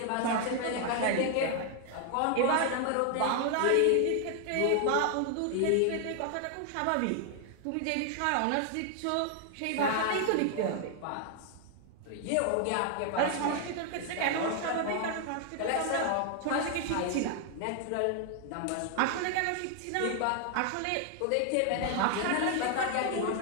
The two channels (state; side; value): different; both; correlation 0.00